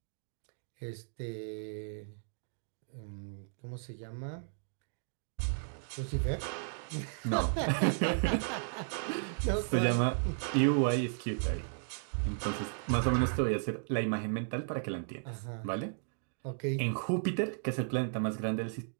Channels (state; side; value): silent; left; digital silence